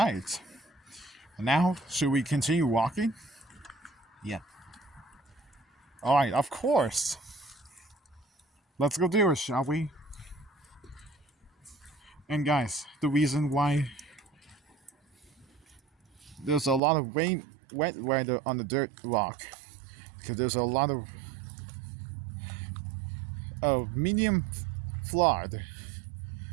Now, should we continue walking? Yeah. All right, of course. Let's go do it, shall we? And guys, the reason why there's a lot of wet weather on the dirt rock, because there's a lot of medium flood.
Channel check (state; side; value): drops out; left; at 16.8 s